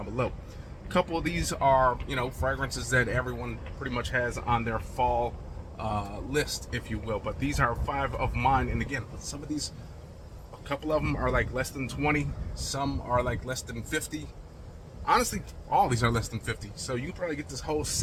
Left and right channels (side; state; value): both; identical; correlation 1.00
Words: below. A couple of these are, you know, fragrances that everyone pretty much has on their fall list, if you will. But these are 5 of mine. And again, some of these, a couple of them are like less than 20. Some are like less than 50. Honestly, all these are less than 50. So you can probably get this whole